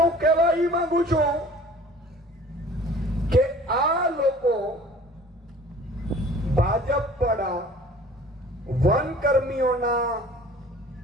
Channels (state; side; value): normal; both; correlation 0.48